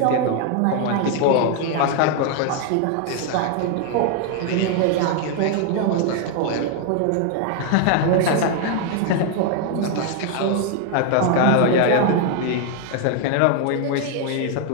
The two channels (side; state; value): both; different; correlation 0.00